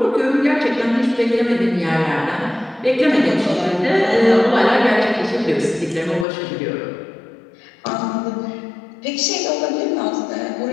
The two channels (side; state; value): right; drops out; at 6.2 s